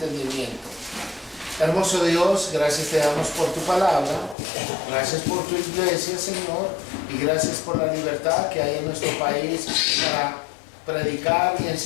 Hermoso Dios, gracias te damos por tu palabra, gracias por tu iglesia, Señor, y gracias por la libertad que hay en nuestro país para predicar y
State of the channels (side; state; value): right; drops out; at 4.4 s